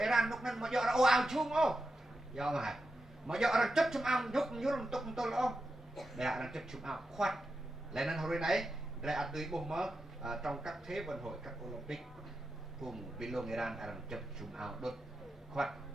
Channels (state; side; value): normal; both; correlation 0.89